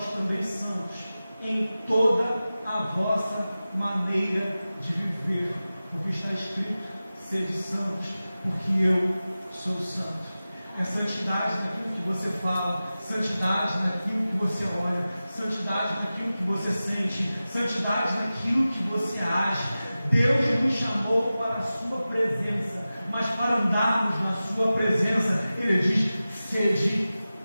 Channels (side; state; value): both; inverted; correlation -0.95